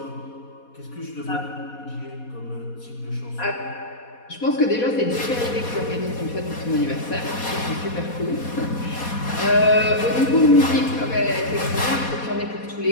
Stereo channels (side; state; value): right; late; 4.2 ms